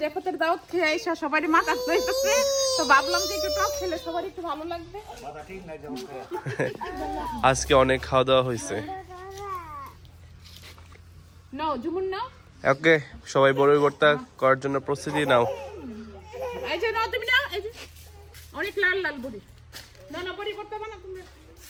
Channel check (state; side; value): identical; both; correlation 1.00